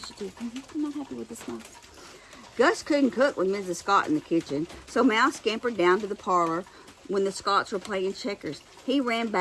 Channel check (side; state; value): both; identical; correlation 1.00